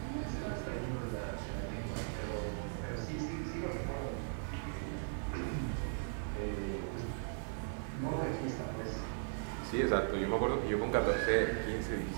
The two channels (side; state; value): left; silent; digital silence